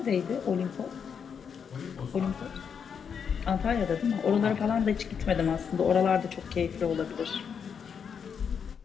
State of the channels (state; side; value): quieter; right; 7.0 dB